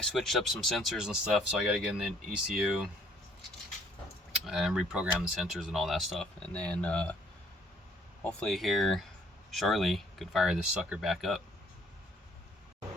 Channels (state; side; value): normal; both; correlation 0.62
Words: switched up some sensors and stuff, so I got to get in the ECU and reprogram the sensors and all that stuff. And then hopefully here shortly could fire this sucker back up.